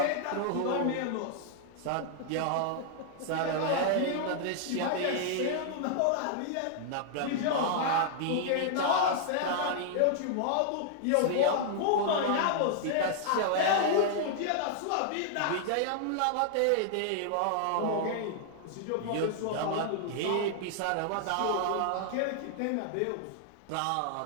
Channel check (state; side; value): different; both; correlation -0.01